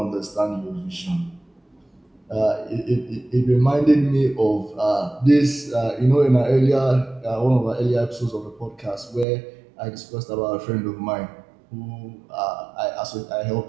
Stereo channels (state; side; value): drops out; left; at 9.2 s